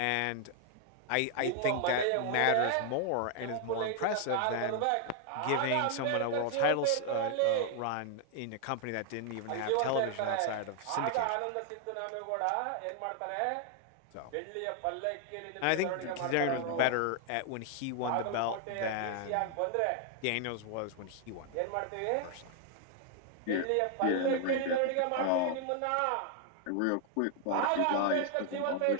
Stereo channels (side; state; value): both; different; correlation 0.00